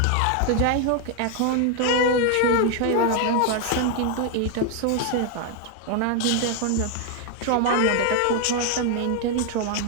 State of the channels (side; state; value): both; different; correlation 0.00